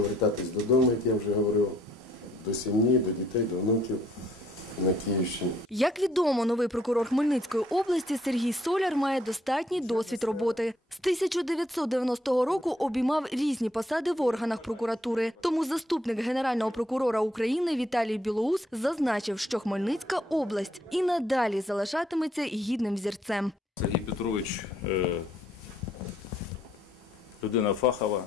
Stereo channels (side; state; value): both; normal; correlation 0.67